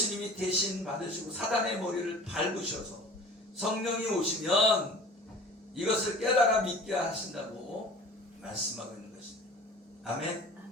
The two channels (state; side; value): normal; both; correlation 0.43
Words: 대신 받으시고 사단의 머리를 밟으셔서 성령이 오시면 이것을 깨달아 믿게 하신다고 말씀하고 있는 것입니다. 아멘.